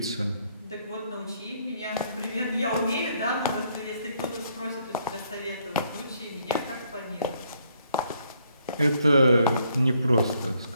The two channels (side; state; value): both; inverted; correlation -0.70